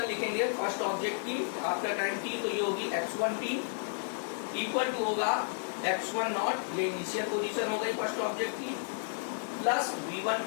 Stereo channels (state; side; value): silent; right; digital silence